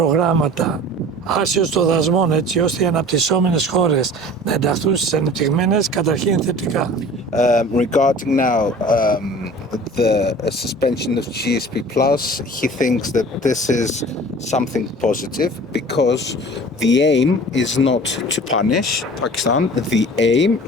άσιος των δασμών, έτσι ώστε οι αναπτυσσόμενες χώρες να ενταχθούν στις ανεπτυγμένες, καταρχήν θετικά. Regarding now the suspension of GSP plus, he thinks that this is something positive because the aim is not to punish Pakistan. The aim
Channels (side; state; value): both; normal; correlation 0.43